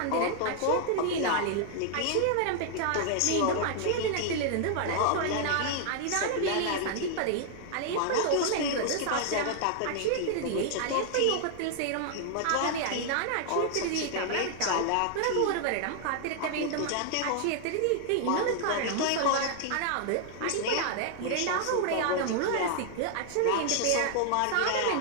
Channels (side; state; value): both; different; correlation 0.00